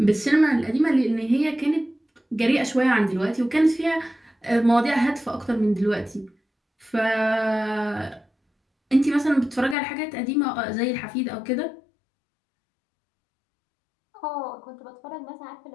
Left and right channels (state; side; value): drops out; right; at 9.8 s